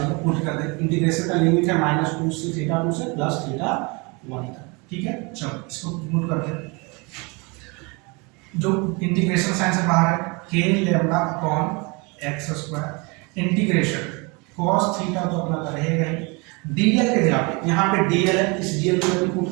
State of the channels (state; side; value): quieter; left; 29.1 dB